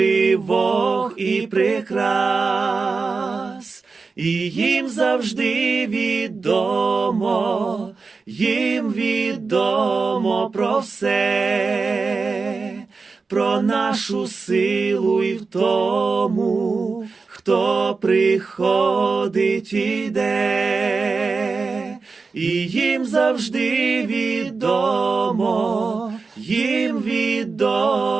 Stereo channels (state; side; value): quieter; left; 4.4 dB